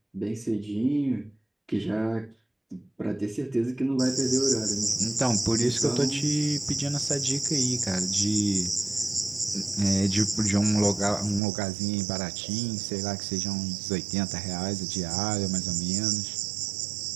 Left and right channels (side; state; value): left; drops out; at 11.4 s